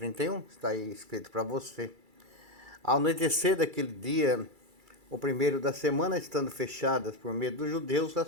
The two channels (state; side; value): late; left; 2.3 ms